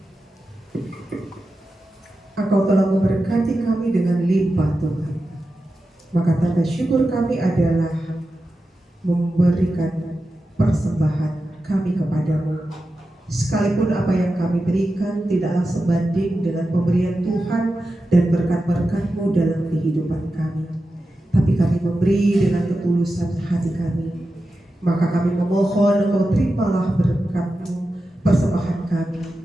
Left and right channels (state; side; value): normal; both; correlation 0.91